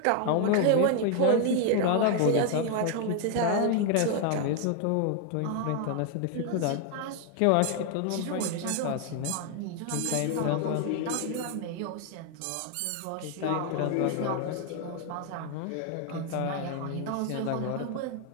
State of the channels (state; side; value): different; both; correlation 0.00